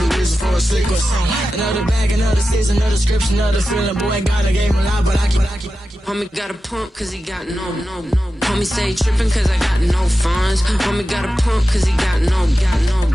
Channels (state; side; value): normal; both; correlation 0.92